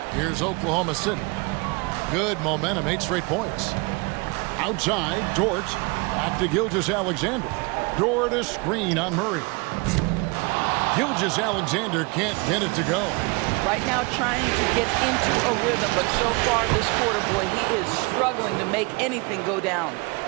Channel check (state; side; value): quieter; left; 28.5 dB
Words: Here's Oklahoma City. Good momentum, 8 straight points. Outside, Dort. Back to Gilgeous-Alexander. Dort a screen on Murray. Gilgeous-Alexander can't get it to go. Right now trying to get into a rhythm, but so far this quarter, boy, he is struggling to make anything go down.